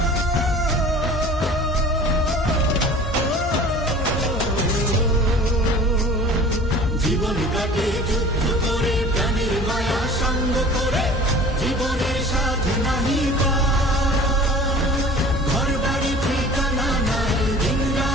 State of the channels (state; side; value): normal; both; correlation 0.44